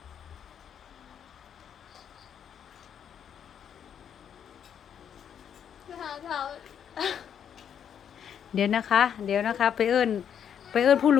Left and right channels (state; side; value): quieter; right; 8.5 dB